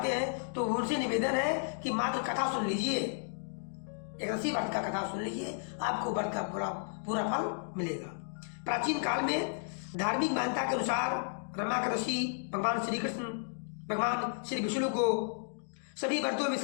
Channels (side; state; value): right; silent; digital silence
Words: हैं, तो उनसे निवेदन है कि मात्र कथा सुन लीजिए, एकादशी व्रत का कथा सुन लीजिए, आपको व्रत का पूरा फल मिलेगा। प्राचीन काल में धार्मिक मान्यता के अनुसार रमा एकादशी भगवान श्री कृष्ण, भगवान श्री विष्णु को सभी व्रतों में